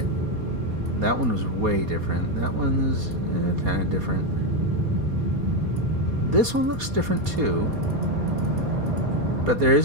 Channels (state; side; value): late; left; 4.2 ms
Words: That one was way different. That one's kind of different. This one looks different too. But there